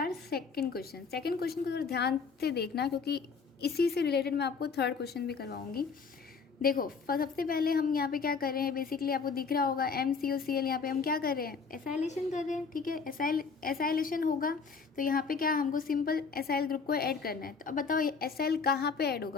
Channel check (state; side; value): quieter; right; 5.2 dB